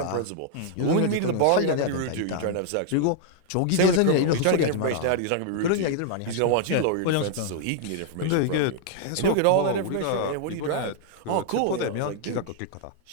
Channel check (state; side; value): different; both; correlation 0.00